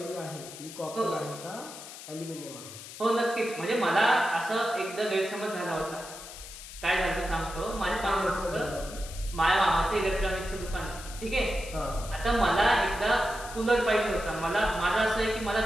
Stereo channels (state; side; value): noise; left; hiss, 13 dB below the sound